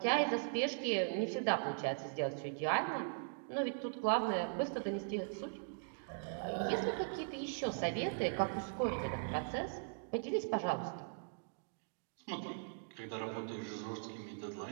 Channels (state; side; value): silent; left; digital silence